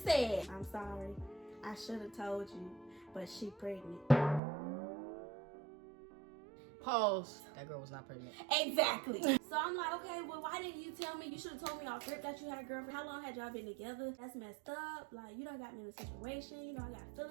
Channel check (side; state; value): left; drops out; at 4.4 s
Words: I'm sorry. I should have told you, but she pregnant. Pause. That girl was not pregnant. Exactly. So I'm like, okay, well, why didn't you tell me? You should have told me off rip that you had a girlfriend. How long had y'all been together? That's messed up. Like, you done got me in a situation. You know, I got